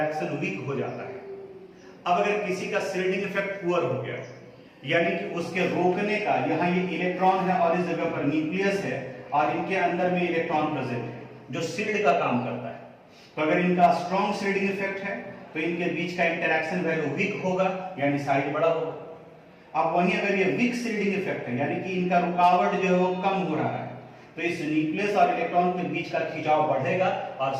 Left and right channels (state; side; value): identical; both; correlation 1.00